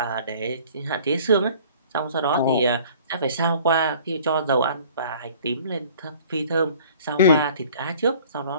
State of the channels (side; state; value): both; inverted; correlation -0.51